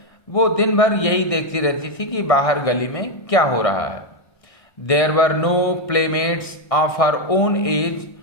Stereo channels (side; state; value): right; late; 1.6 ms